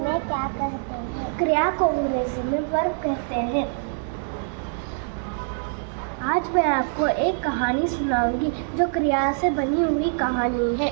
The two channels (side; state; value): left; silent; digital silence